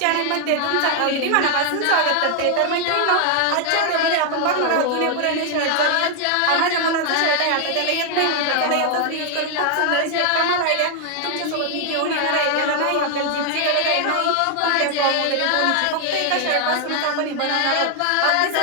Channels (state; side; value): different; both; correlation 0.00